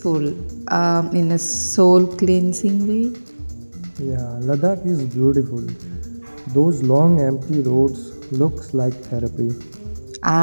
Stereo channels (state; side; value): inverted; both; correlation -1.00